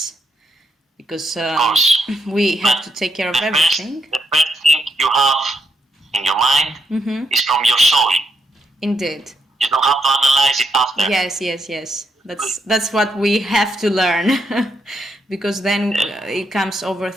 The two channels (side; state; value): both; normal; correlation 0.79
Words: because we have to take care of everything. The first thing you have in your mind is from your soul. Indeed. You don't have to analyze it after. Yes. That's what we have to learn, because then it comes